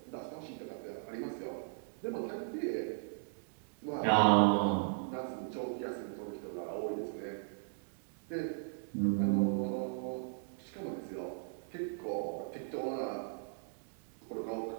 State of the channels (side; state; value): left; silent; digital silence